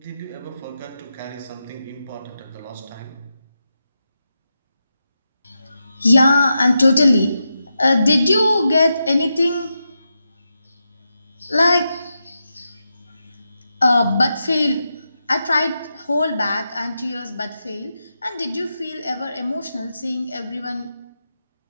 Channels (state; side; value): inverted; both; correlation -0.88